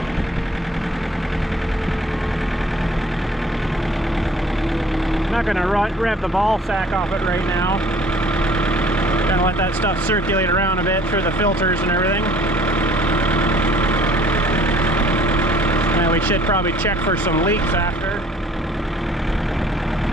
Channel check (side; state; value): both; normal; correlation 0.54